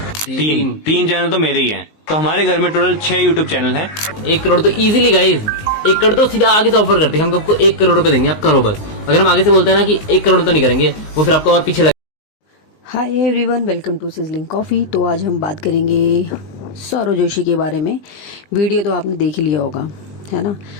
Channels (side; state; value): right; late; 19 ms